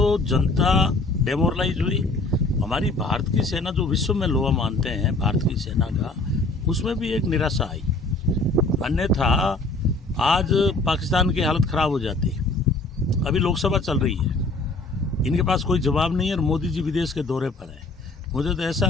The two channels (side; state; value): right; quieter; 3.0 dB